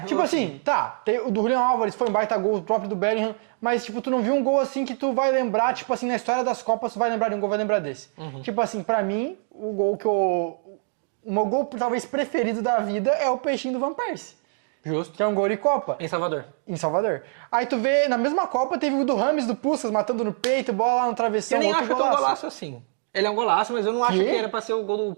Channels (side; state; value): left; silent; 56 dB below the other